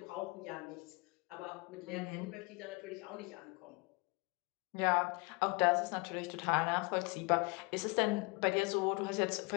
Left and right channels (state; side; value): quieter; right; 28.2 dB